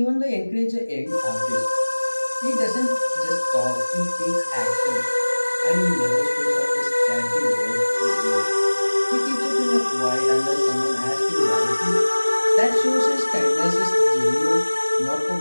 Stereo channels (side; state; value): both; inverted; correlation -1.00